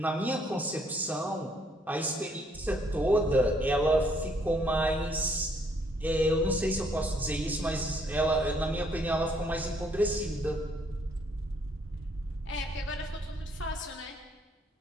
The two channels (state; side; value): normal; both; correlation 0.67